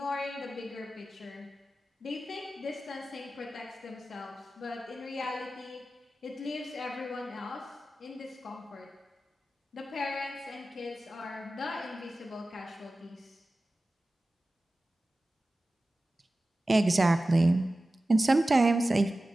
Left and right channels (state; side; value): normal; both; correlation 0.95